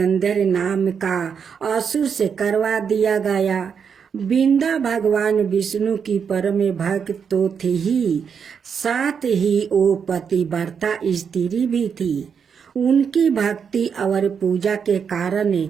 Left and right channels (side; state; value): left; quieter; 6.8 dB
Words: नाम का असुर से करवा दिया गया। बिंदा भगवान विष्णु की परम भक्त तो थी ही, साथ ही वो पतिव्रता स्त्री भी थी। उनकी भक्ति और पूजा के कारण